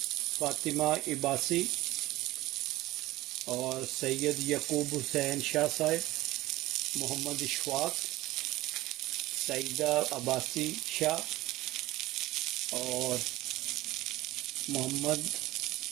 Fatima Ibasi और सैयद यकूब हुसैन शाह साहब, मोहम्मद इशफाक, सईदा अब्बासी शाह और मोहम्मद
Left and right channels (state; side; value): quieter; left; 17.6 dB